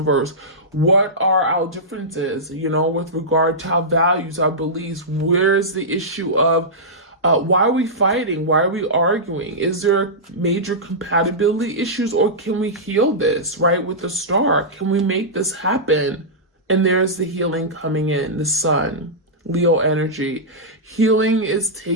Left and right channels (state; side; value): normal; both; correlation -0.13